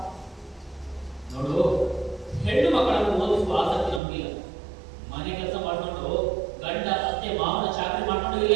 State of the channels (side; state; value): left; drops out; at 4.0 s